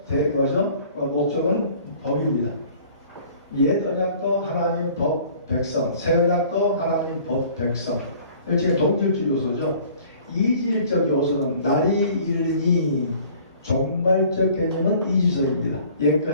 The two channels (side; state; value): both; inverted; correlation -0.52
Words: 목적은 법입니다. 옛 언약도 하나님 법 백성, 새 언약도 하나님 법 백성. 일종의 동질적 요소죠. 이질적 요소는 날이 이르니, 종말적 개념은 이지서입니다.